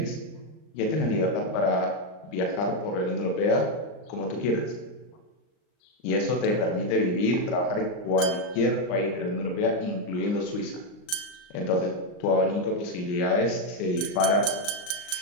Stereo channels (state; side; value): late; right; 39 ms